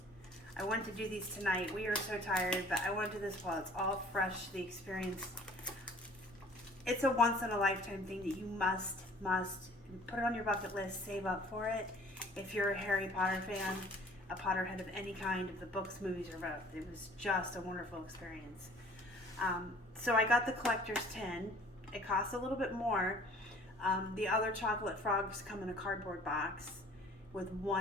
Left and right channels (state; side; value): normal; both; correlation 0.52